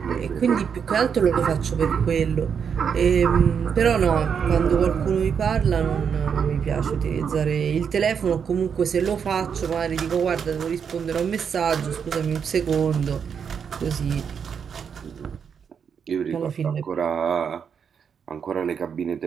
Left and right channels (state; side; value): quieter; left; 7.0 dB